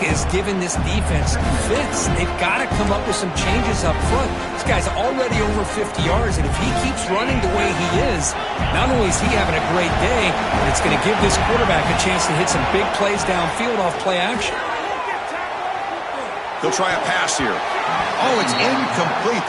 giving this defense fits. They've got to come up with some changes up front. This guy's already over 50 yards, and if he keeps running the way he is, not only is he having a great day, but it's going to give this quarterback a chance to hit some big plays downfield off play action. They'll try a pass here. Oh, it's incomplete.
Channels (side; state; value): both; identical; correlation 1.00